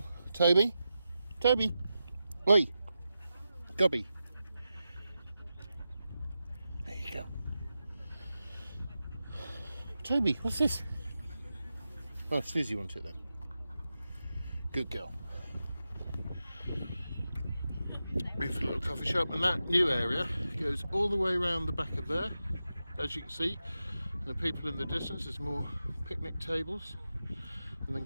Toby? Toby? Oi! Gobby. There you go. Toby, what's this? Oh, Suzi wants it then. Good girl. Beautiful little coffee shop, and that new area goes all the way around the back of there, as you can see. And the people in the distance, there's more picnic tables, and then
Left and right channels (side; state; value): both; inverted; correlation -0.91